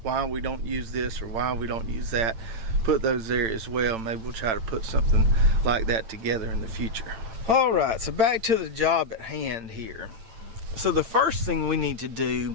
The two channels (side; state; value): left; late; 8.8 ms